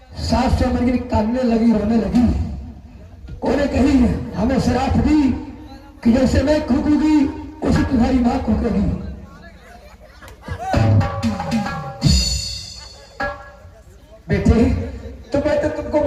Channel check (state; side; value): identical; both; correlation 1.00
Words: 700 मिर्गिन काटने लगी, रोने लगी। उन्हें कही हमें शराब दी कि जैसे मैं कूदूंगी उसी तुम्हारी मां कूदेगी। बेटे तो मैं तो तुमको